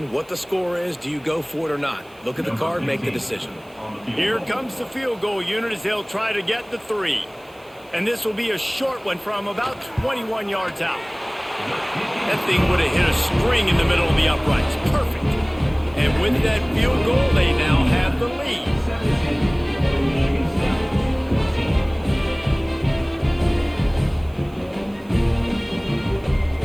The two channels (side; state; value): right; noise; hiss, 29 dB below the sound